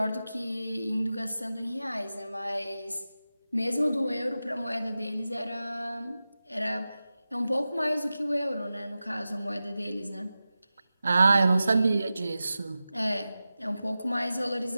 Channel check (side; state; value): both; inverted; correlation -0.94